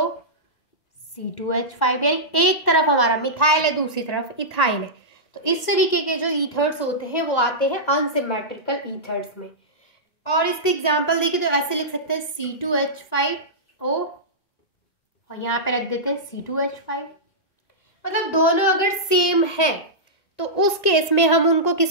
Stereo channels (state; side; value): late; right; 1.9 ms